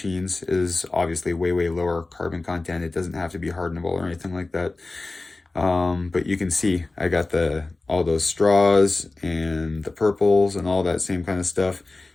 is obviously way lower carbon content. It doesn't have to be hardenable or anything like that. But you can see I got all those straws and the purples and all that same kind of stuff.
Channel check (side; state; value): right; quieter; 3.3 dB